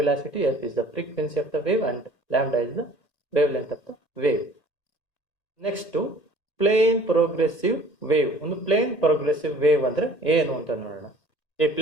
velocity, f is the frequency of the wave, and lambda is the wavelength of the wave. Next to plane progressive wave. ಒಂದು plane progressive wave ಅಂದ್ರೆ ಏನು ಅಂತ ನೋಡೋಣ. A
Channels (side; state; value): right; late; 1.8 ms